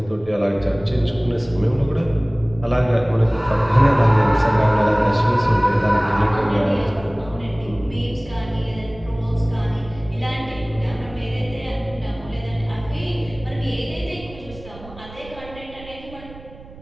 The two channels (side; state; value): right; noise; rumble, 18 dB below the sound